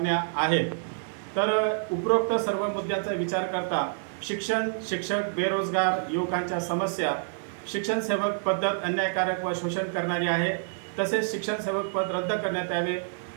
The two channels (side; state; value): left; silent; digital silence